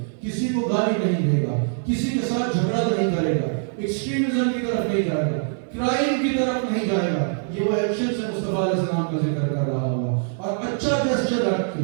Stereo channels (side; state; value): left; silent; 59 dB below the other